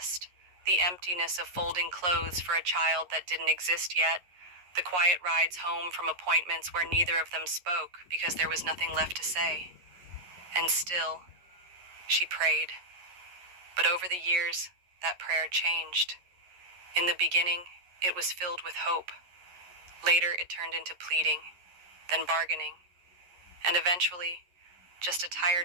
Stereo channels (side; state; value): left; late; 11 ms